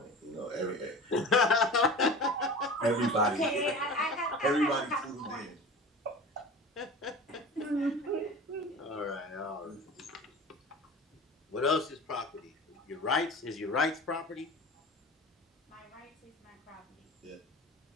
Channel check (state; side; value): normal; both; correlation 0.36